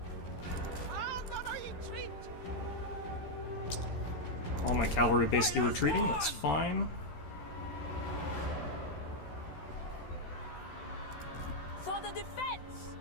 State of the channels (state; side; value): late; right; 14 ms